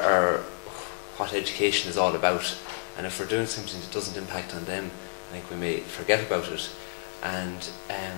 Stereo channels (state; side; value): silent; right; digital silence